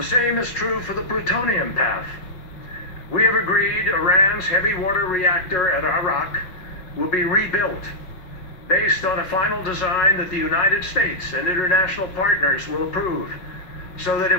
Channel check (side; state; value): right; late; 5.5 ms